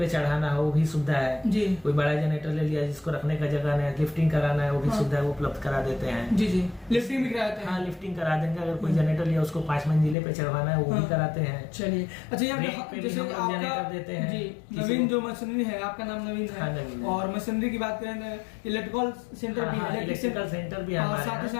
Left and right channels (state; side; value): drops out; right; at 10.2 s